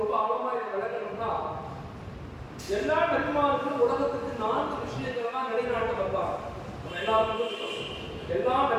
ஆழமா இதை விளக்கணும்னா, எல்லா நபிமார்களும் உலகத்துக்கு 4 விஷயங்கள் தான் நிலைநாட்ட வந்தாங்க. நம்ம எல்லாருக்கும் எல்லா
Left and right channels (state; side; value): identical; both; correlation 1.00